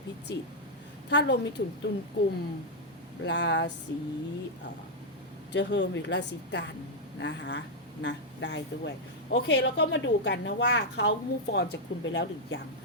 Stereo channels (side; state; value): both; normal; correlation -0.02